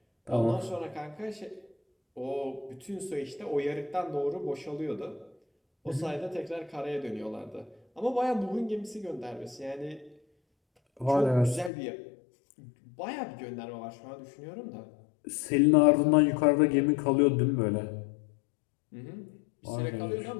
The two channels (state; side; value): drops out; right; at 11.7 s